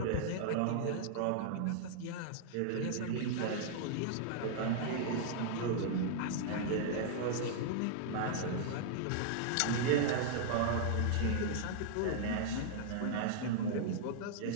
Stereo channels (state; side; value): different; both; correlation -0.01